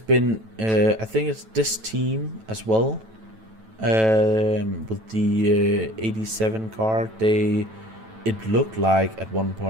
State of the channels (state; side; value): late; left; 9.1 ms